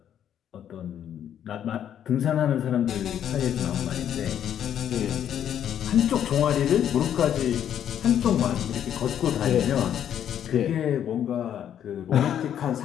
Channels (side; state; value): right; quieter; 9.8 dB